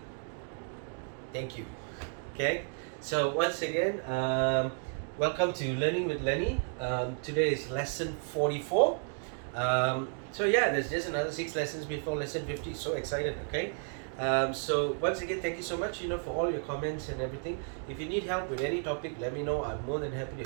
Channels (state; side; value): silent; left; 56 dB below the other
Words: Thank you. Okay, so once again, welcome to Learning with Lenny. Today is lesson 44. So yeah, there's just another 6 lessons before lesson 50. So excited, okay? So once again, thank you so much, for all your comments and everything. If you need help with any topic, let me know. I'm more than happy to